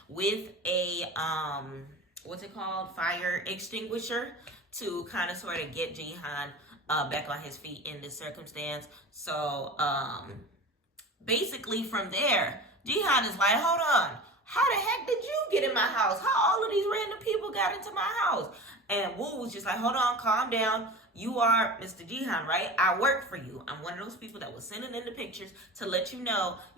with a what's it called, fire extinguisher, to kind of sort of get Gihan back on his feet in this circumstance. So basically from there, Gihan is like, hold on, how the heck did you get in my house? How all of these random people got into my house? And Woo was just like, hold on, calm down. You are Mr. Gihan, right? I work for you. I'm one of those people that was sending in the pictures to let you know,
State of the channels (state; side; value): normal; both; correlation 0.34